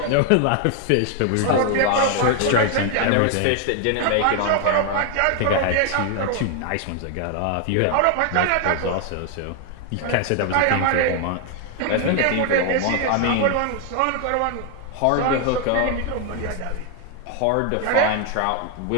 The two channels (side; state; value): both; different; correlation 0.00